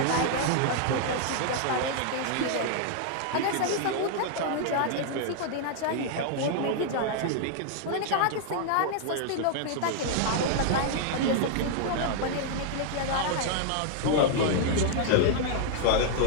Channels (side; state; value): both; different; correlation -0.01